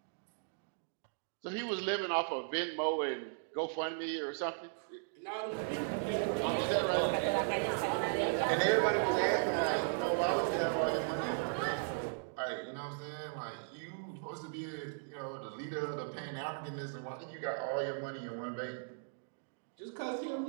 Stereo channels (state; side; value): silent; left; digital silence